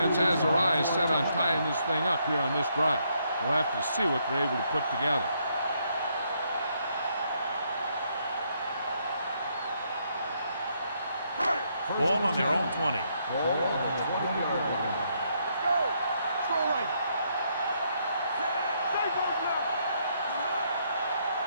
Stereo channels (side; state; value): both; inverted; correlation -0.74